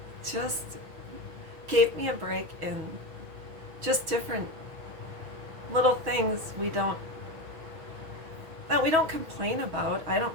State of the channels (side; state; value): left; late; 6.2 ms